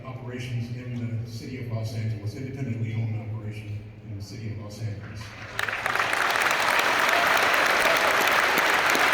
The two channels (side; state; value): both; identical; correlation 1.00